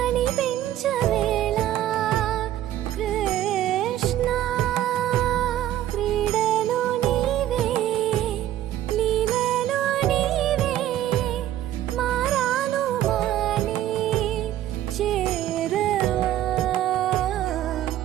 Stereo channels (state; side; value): quieter; left; 12.7 dB